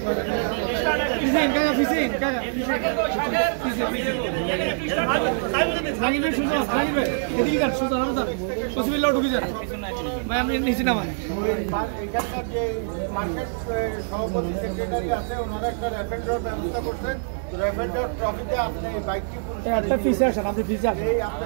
এখানকার যে মার্কেট সভাপতি সেক্রেটারি আছে ওনারা একটা র্যাপিড ড্র ব্যবস্থা করছেন র্যাপিড ড্র ট্রফিতে আপনি বাইকটি একটা পিছে আসেন আপনি পিছে আসেন এই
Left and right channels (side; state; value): left; silent; digital silence